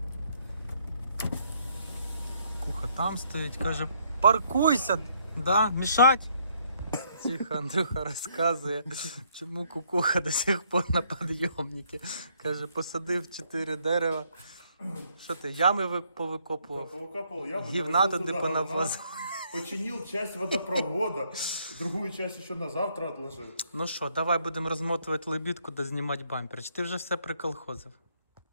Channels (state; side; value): inverted; both; correlation -0.69